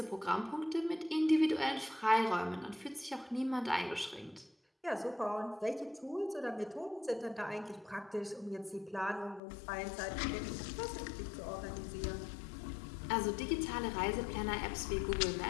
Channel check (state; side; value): drops out; right; at 9.4 s